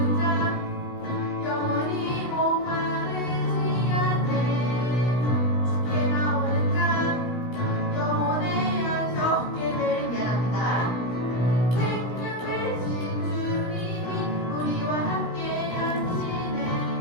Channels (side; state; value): right; late; 17 ms